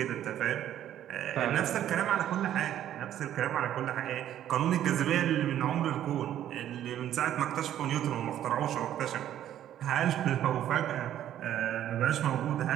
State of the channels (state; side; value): quieter; left; 11.4 dB